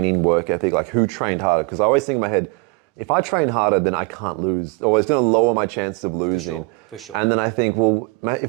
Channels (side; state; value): left; quieter; 29.1 dB